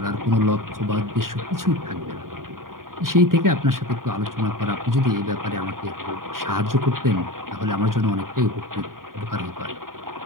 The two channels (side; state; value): left; late; 0.91 ms